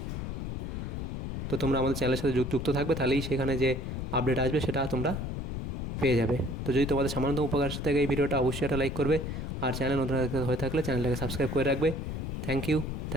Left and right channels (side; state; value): left; noise; rumble, 4 dB below the sound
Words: তো তোমরা আমাদের চ্যানেলের সাথে যুক্ত থাকবে, তাহলেই সেখানে যে আপডেট আসবে সেটা তোমরা পেয়ে যাবে। তো যদি তোমাদের সামান্য উপকার থাকে এই ভিডিওটা, অবশ্যই একটা লাইক করবে। আর চ্যানেল নতুন হয়ে থাকলে চ্যানেলটাকে সাবস্ক্রাইব করে রাখবে। Thank you,